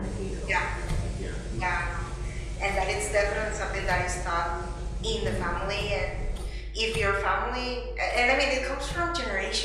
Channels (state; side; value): identical; both; correlation 1.00